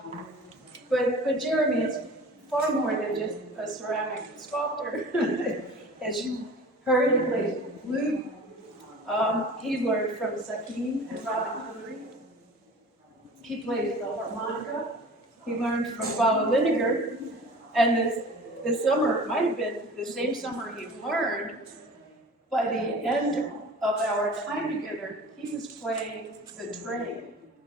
Jeremy is far more than just a ceramic sculptor. As you heard, he plays flute. He learned from Sakim and Robin Hungry. He plays the harmonica. He learned from Baba Lineker. And this summer, it might have been the same summer he learned, by the end of our time together, he was playing the train.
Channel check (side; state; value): both; normal; correlation 0.41